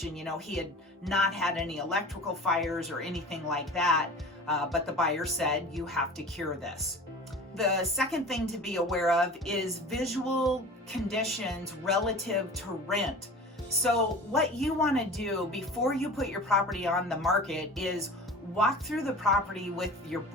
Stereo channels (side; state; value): both; normal; correlation 0.37